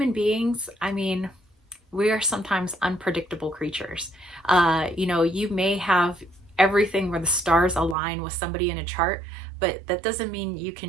beings, I mean, we are sometimes unpredictable creatures. You may have everything where the stars align with somebody in a chart, but that doesn't mean you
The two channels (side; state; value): left; drops out; at 8.0 s